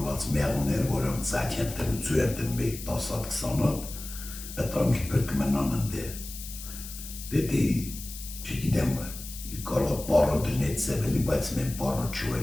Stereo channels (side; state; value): left; noise; hiss, 11 dB below the sound